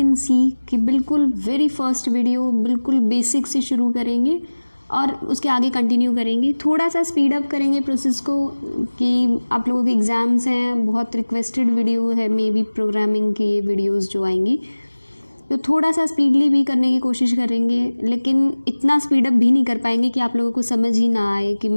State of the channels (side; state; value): both; inverted; correlation -1.00